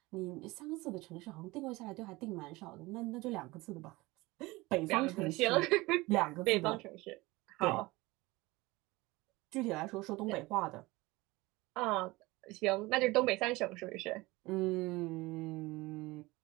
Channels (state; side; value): quieter; left; 21.5 dB